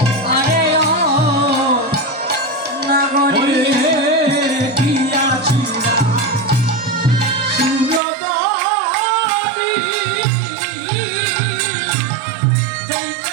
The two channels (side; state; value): left; drops out; at 8.0 s